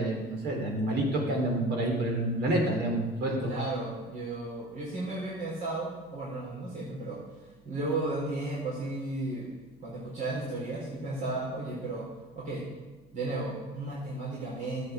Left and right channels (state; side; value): noise; right; hum, 30 dB below the sound